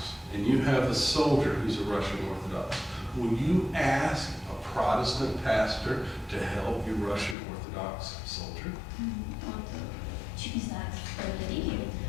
and you have a soldier who's a Russian Orthodox, will you ask a Protestant pastor to help your Russian Orthodox soldier? Вот, чуть не знаю, что это религии,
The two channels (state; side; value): drops out; right; at 7.4 s